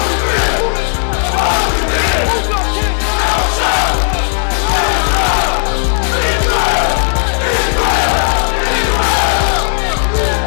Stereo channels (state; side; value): silent; right; digital silence